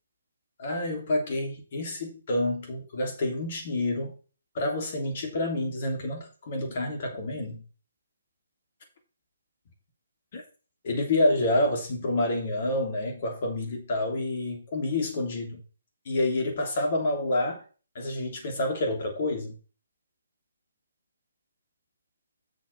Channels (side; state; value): both; inverted; correlation -0.68